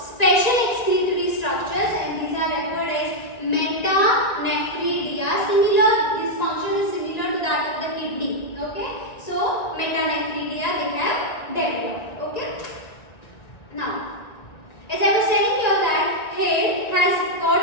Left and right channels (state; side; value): late; right; 1.9 ms